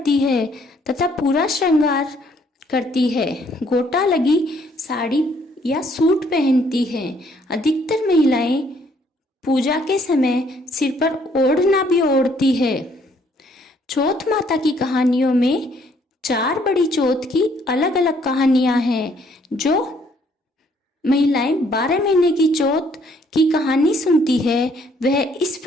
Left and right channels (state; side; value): normal; both; correlation 0.65